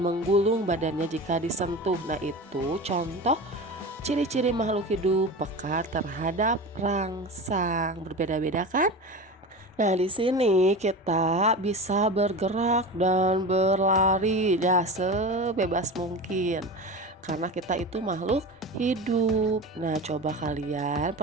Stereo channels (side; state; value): both; normal; correlation 0.29